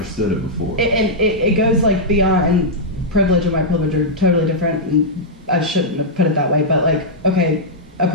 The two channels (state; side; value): normal; both; correlation -0.08